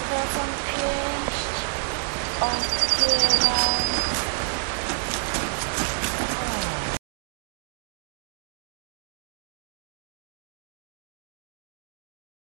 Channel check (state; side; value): silent; left; 59 dB below the other